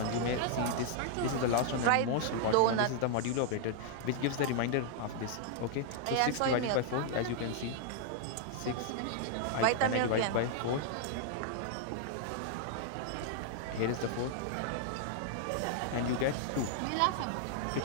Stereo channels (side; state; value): both; different; correlation -0.01